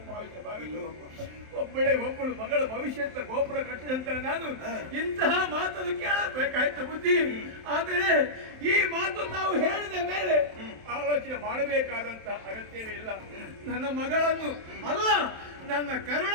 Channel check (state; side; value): late; left; 27 ms